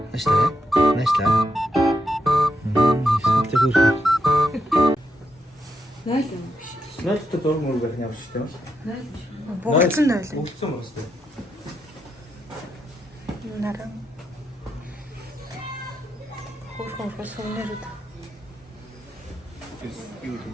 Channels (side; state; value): both; normal; correlation 0.81